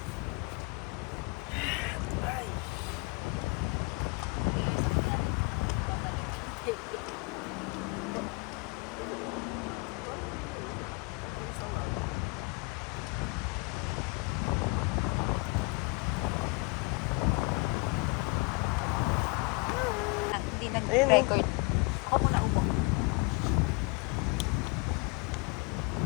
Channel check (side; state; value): right; quieter; 27.5 dB